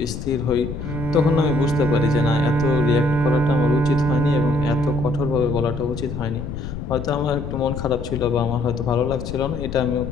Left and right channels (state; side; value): noise; left; rumble, 7 dB below the sound